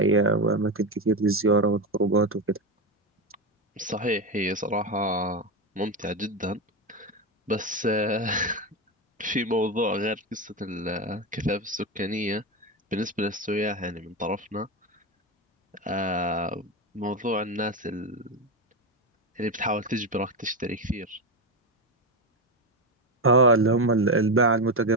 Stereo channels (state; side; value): normal; both; correlation 0.13